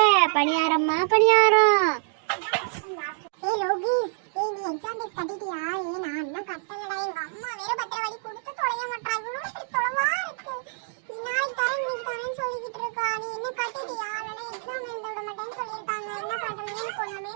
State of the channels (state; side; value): silent; left; digital silence